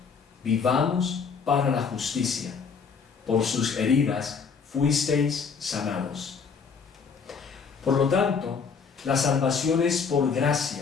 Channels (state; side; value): quieter; right; 5.7 dB